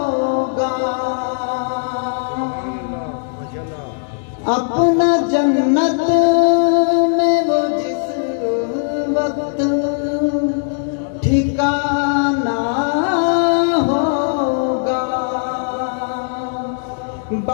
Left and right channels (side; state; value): right; silent; digital silence